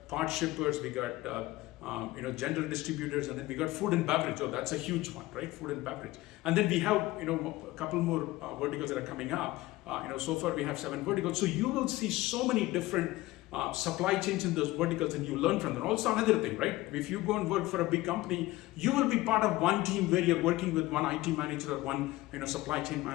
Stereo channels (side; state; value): right; quieter; 18.5 dB